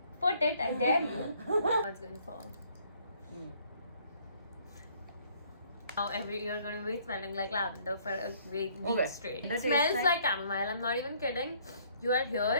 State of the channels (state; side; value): inverted; both; correlation -0.62